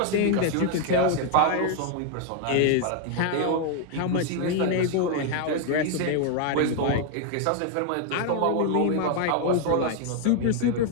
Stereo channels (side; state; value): both; different; correlation 0.00